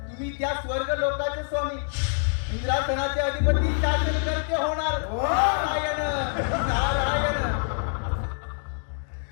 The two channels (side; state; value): right; silent; digital silence